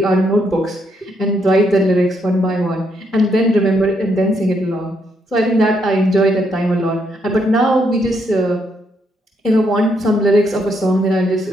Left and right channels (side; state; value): both; normal; correlation 0.75